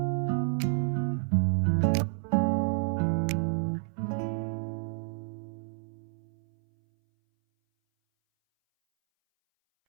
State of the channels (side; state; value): left; silent; 58 dB below the other